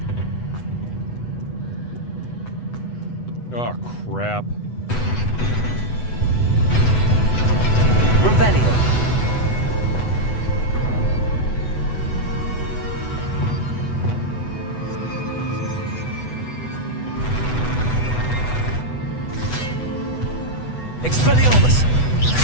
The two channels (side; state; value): right; late; 8.1 ms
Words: Oh, crap. Revelio. Expelliarmus.